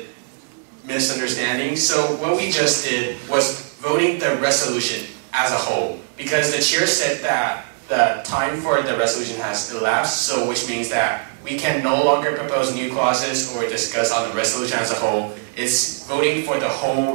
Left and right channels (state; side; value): silent; left; 65 dB below the other